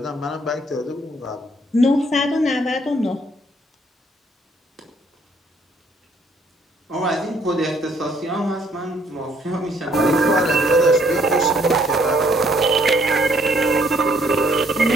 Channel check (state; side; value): normal; both; correlation 0.66